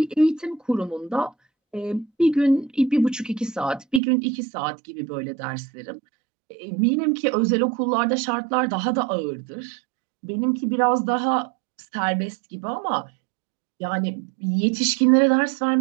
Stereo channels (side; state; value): left; drops out; at 4.0 s